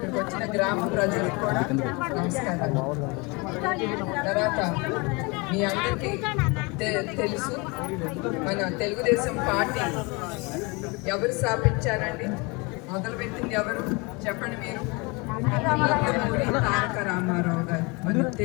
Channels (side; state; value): right; quieter; 27.8 dB